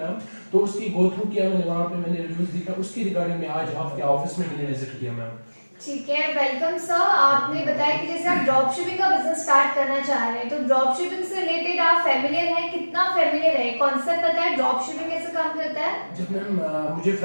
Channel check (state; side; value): inverted; both; correlation -1.00